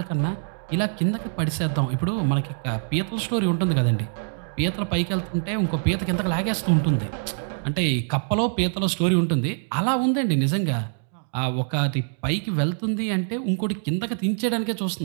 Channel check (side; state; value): left; silent; 62 dB below the other